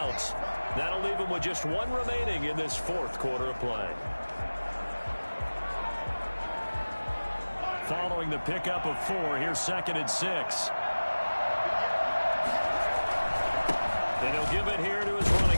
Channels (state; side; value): inverted; both; correlation -1.00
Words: That'll leave them with just 1 remaining in this 4th quarter of play. Following the pickup of 4, here's 2nd and 6. And he'll give it here to his